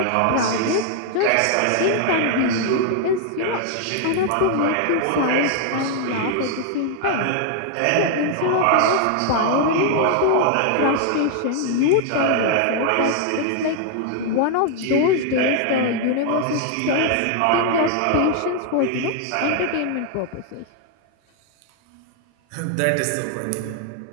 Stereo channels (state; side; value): different; both; correlation 0.00